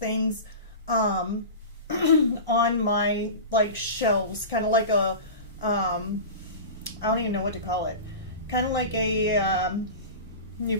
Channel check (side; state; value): both; inverted; correlation -0.30